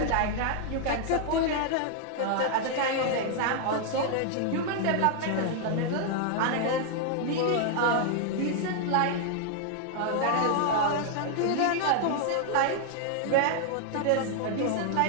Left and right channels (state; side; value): different; both; correlation 0.00